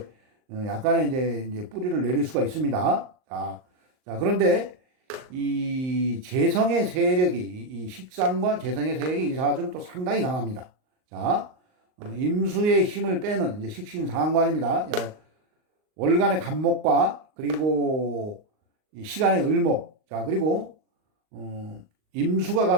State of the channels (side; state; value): left; late; 38 ms